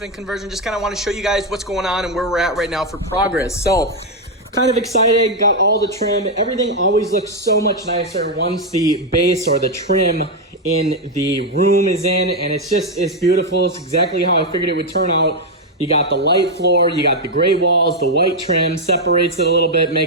conversion. Just kind of want to show you guys what's going on and where we're at right now for progress. So, kind of excited, got all the trim. Everything always looks so much nicer once the base or the trim in the room is in, and it's beautiful. It's exactly how I figured it would turn out. You got the light floor, you got the gray walls, the white trim, separates it a little bit,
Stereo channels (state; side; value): normal; both; correlation 0.02